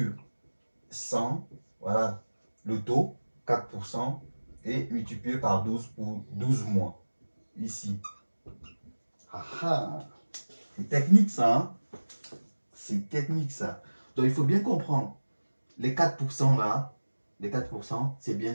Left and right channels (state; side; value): inverted; both; correlation -1.00